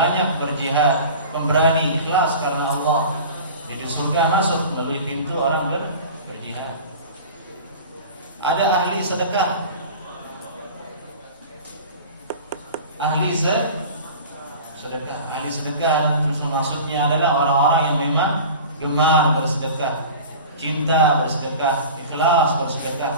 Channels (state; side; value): inverted; both; correlation -0.38